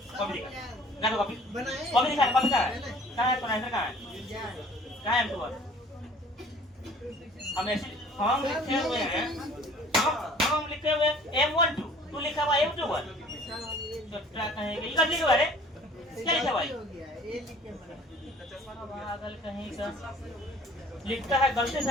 कॉपी दिखा, तो कॉपी कॉपी दिखा, कॉपी कहाँ है, तो नहीं कहाँ है M21? हम ऐसे फॉर्म लिखे हुए हैं, फॉर्म लिखे हुए M12, तू लिखा हुआ M21, तो क्या कहेंगे, ये लिखा हुआ है, क्या लिखा हुआ है? पागल कहीं का लिखता है, गलती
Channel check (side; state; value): both; normal; correlation 0.51